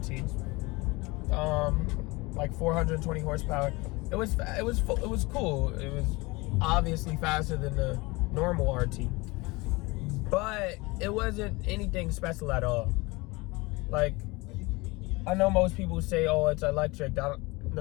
like 420 horsepower. It was cool. It was obviously faster than the normal RT, but it wasn't anything special at all. Like, I know most people say, oh, it's electric.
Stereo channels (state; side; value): quieter; right; 23.9 dB